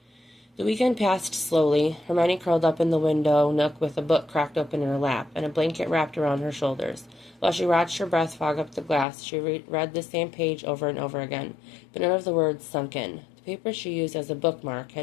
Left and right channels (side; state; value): right; drops out; at 9.1 s